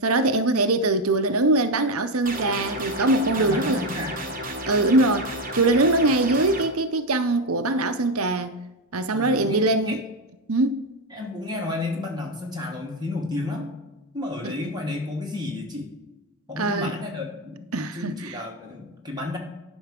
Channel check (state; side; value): normal; both; correlation 0.10